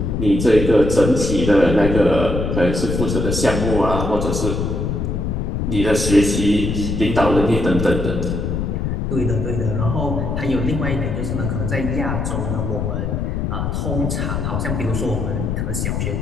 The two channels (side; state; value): left; noise; rumble, 1 dB below the sound